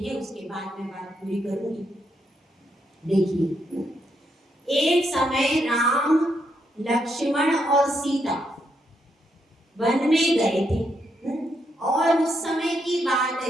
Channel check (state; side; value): normal; both; correlation 0.78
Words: उसके बाद मैं बात पूरी करूंगी। देखिए, एक समय राम, लक्ष्मण और सीता वन में गए थे और उस समय की बात